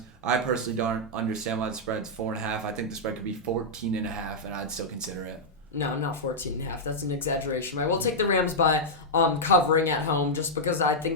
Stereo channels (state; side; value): normal; both; correlation -0.06